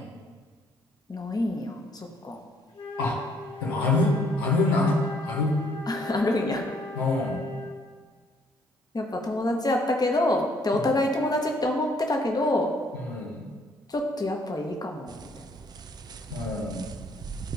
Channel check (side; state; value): both; normal; correlation 0.65